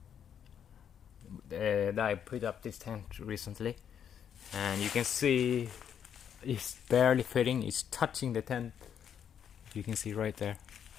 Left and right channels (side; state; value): right; quieter; 8.5 dB